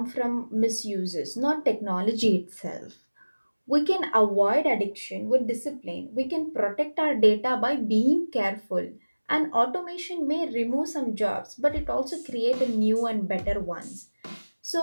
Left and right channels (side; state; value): both; inverted; correlation -1.00